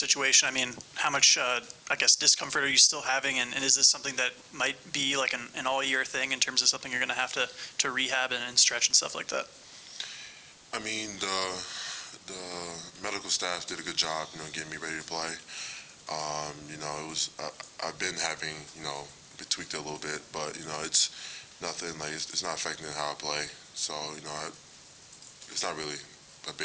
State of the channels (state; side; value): identical; both; correlation 1.00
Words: how much, discomfort are you still having, and is this something that might be an all-year thing in terms of something you're going to have to rehab and stretch and stuff like that? The medical staff did a good job, getting me ready to play. I've been having, tweaked it a little bit, but, it's nothing, it's not affecting how I play. So, it's not really a